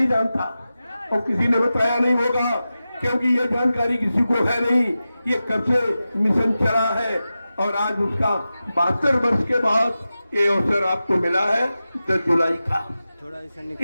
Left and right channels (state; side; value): inverted; both; correlation -0.93